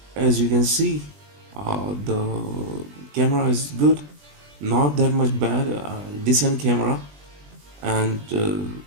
as you can see, the camera is good, not that much bad, decent camera. And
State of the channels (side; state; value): left; late; 20 ms